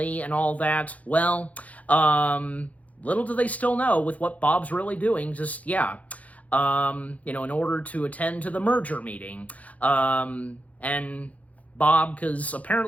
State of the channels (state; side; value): late; right; 0.070 ms